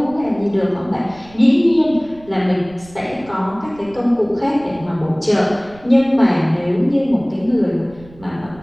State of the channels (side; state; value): right; noise; rumble, 22 dB below the sound